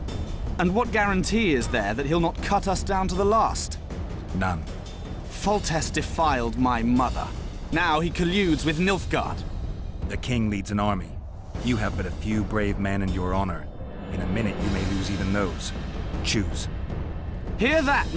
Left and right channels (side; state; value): both; identical; correlation 1.00